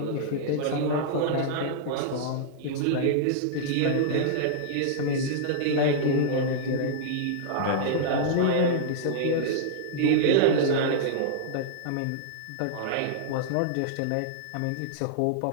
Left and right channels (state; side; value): different; both; correlation -0.01